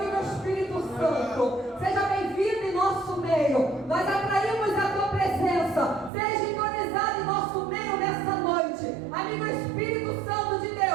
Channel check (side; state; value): left; drops out; at 6.1 s